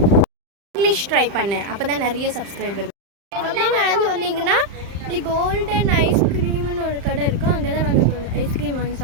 இங்கிலீஷ் ட்ரை பண்ணேன், அப்போ தான் நிறைய சப்ஸ்கிரைபர். அப்படியே நடந்து வந்தீங்கன்னா இப்படி கோல்டன் ஐஸ்கிரீம்னு ஒரு கடை இருக்கும். அங்கே தான் நாங்கள் ஐஸ்கிரீம் வாங்கி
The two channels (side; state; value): left; late; 35 ms